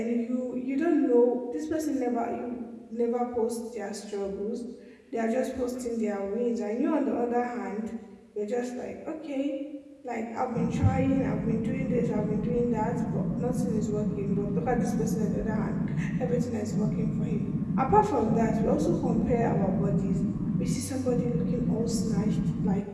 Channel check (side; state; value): both; identical; correlation 1.00